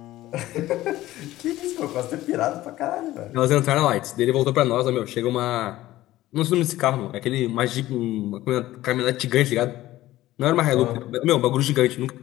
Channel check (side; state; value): right; quieter; 15.8 dB